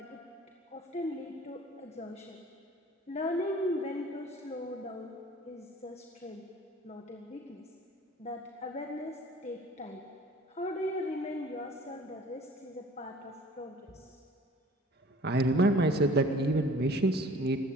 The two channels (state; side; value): normal; both; correlation 0.49